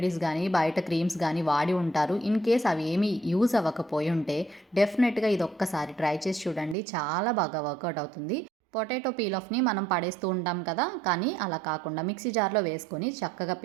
గానీ, బయట క్రీమ్స్ గానీ వాడి ఉంటారు. ఇన్ కేస్ అవి ఏమీ యూజ్ అవ్వకపోయుంటే డెఫినెట్‌గా ఇదొక్కసారి ట్రై చేసి చూడండి. చాలా బాగా వర్కౌట్ అవుతుంది. పొటాటో పీల్ ఆఫ్‌ని మనం పడేస్తూ ఉంటాం కదా! కానీ అలా కాకుండా మిక్సీ జార్‌లో వేసుకొని చక్కగా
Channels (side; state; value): left; drops out; at 6.8 s